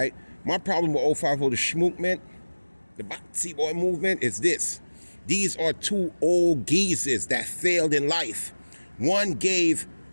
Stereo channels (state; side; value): inverted; both; correlation -1.00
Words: My problem with 050 the Schmook man, the Batsy Boy movement, is this. These are two old geezers that failed in life. One gave